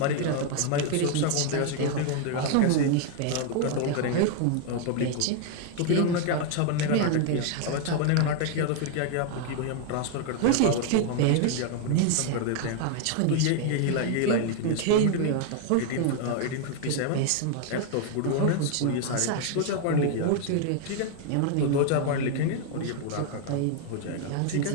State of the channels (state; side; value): different; both; correlation 0.00